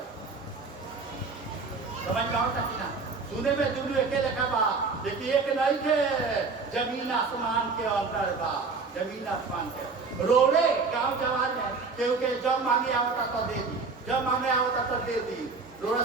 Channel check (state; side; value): quieter; left; 4.4 dB